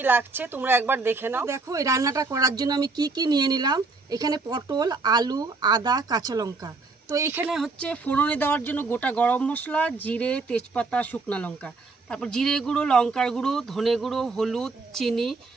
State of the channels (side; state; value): left; quieter; 3.8 dB